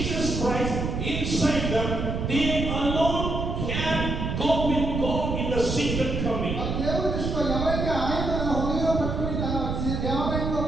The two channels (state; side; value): noise; right; rumble, 2 dB below the sound